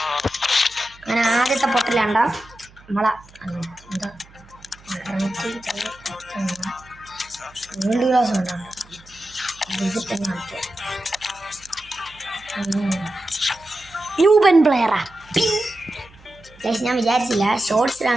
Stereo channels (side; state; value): right; noise; hum, 25 dB below the sound